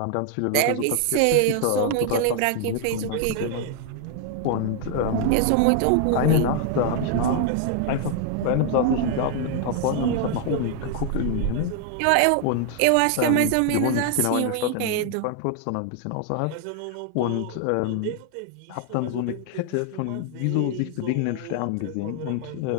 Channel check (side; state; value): both; different; correlation 0.00